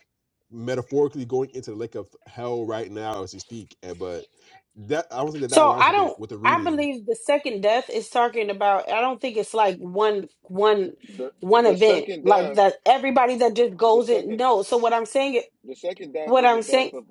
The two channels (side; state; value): both; identical; correlation 1.00